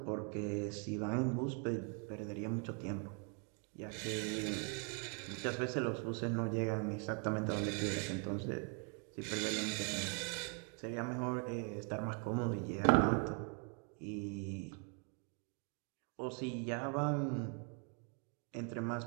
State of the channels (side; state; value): left; quieter; 38.8 dB